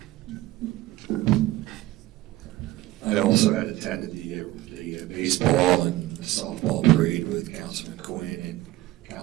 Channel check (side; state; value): left; quieter; 16.9 dB